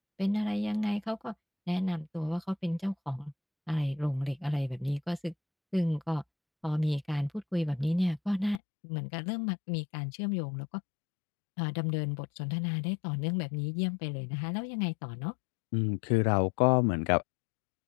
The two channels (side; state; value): right; drops out; at 8.6 s